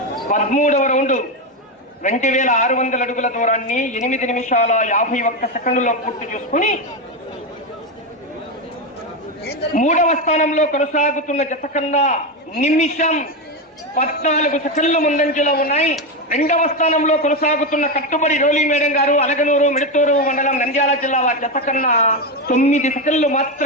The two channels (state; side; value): normal; both; correlation 0.11